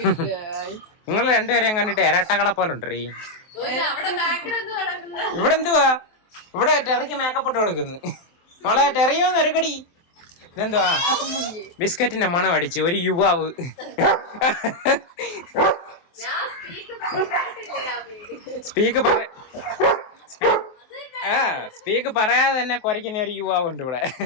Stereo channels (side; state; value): right; late; 23 ms